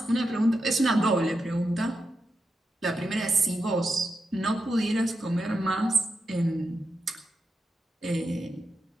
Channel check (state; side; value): normal; both; correlation 0.86